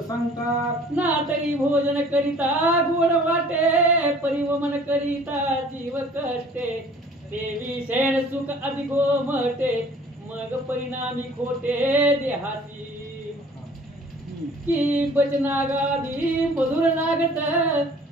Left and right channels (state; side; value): normal; both; correlation 0.51